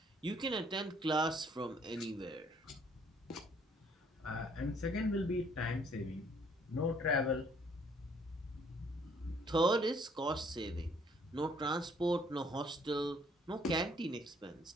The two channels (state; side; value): normal; both; correlation 0.63